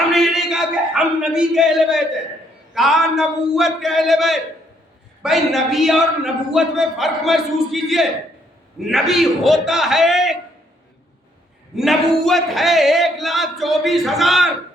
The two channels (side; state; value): both; normal; correlation 0.69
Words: نے یہ نہیں کہا کہ ہم نبی کے اہل بیت ہیں، کہا نبوت کے اہل بیت. بھئی نبی اور نبوت میں فرق محسوس کیجئے. نبی ہوتا ہے، نبوت ہے 1,24,000.